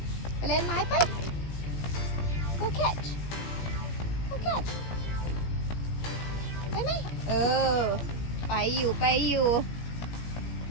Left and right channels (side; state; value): right; late; 17 ms